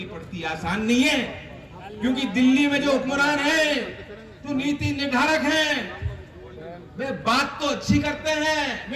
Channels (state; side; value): identical; both; correlation 1.00